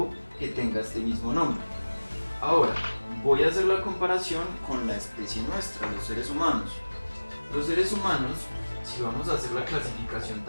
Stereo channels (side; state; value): both; inverted; correlation -1.00